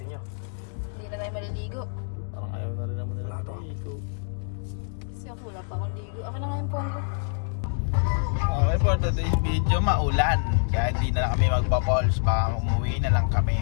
sinyo. Hindi na tayo maliligo. Parang ayaw na rin naman nila maligo. Kasi ang kulat ako ligo. Ako na nga yung polo. Okay, for today's video, maulan. Kaya hindi na lang kami magpa-falls. Baka umuwi na lang kami.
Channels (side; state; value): right; silent; digital silence